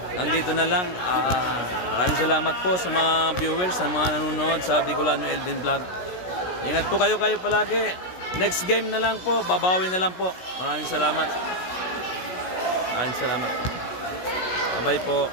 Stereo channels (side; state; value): right; late; 16 ms